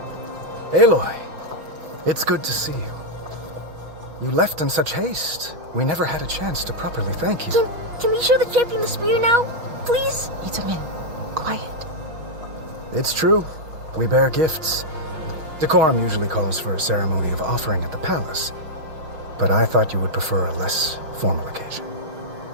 Aloy, it's good to see you. You left in such haste. We never had a chance to properly thank you. Can we show the champion the spear now? Please? Itamin, quiet. It's true. We bear gifts. Decorum usually calls for a ceremony of offering at the palace, but I thought you would prefer a less formal occasion.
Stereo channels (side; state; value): left; late; 5.6 ms